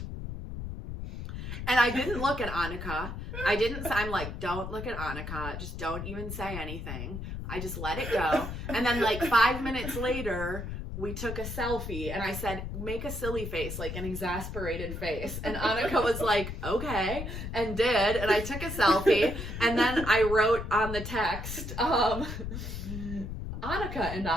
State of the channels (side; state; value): left; noise; rumble, 7 dB below the sound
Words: And I didn't look at Annika. I'm like, don't look at Annika. Just don't even say anything. I just let it go. And then like 5 minutes later, we took a selfie, and I said, make a silly face, like an exasperated face. And Annika was like, okay, and did. And I took a selfie, and then I wrote on the text, Annika and